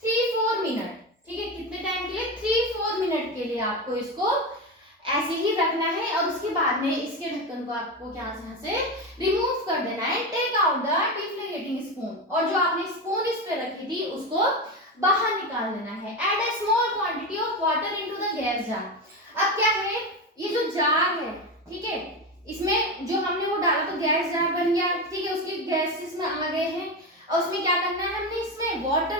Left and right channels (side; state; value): both; normal; correlation 0.18